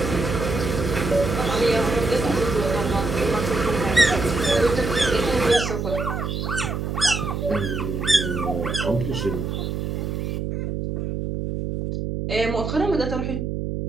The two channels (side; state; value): right; noise; hum, 3 dB below the sound